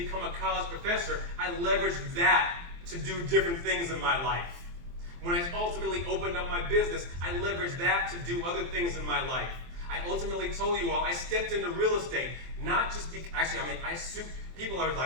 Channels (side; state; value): left; late; 23 ms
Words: a college professor, I leveraged that to do different things in my life. When I ultimately opened up my business, I leveraged that to do other things in my life. I ultimately told you all, I stepped into real estate, not just people are